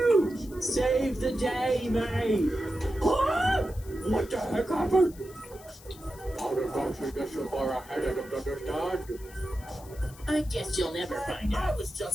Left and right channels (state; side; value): noise; left; hiss, 21 dB below the sound